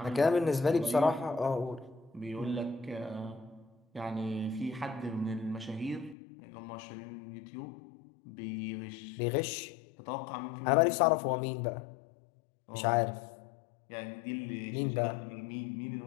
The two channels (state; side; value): drops out; right; at 6.2 s